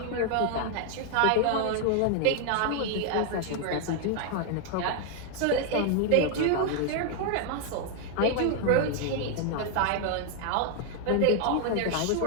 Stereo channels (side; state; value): both; different; correlation 0.00